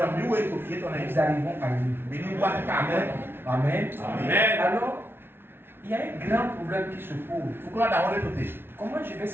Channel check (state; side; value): late; left; 0.11 ms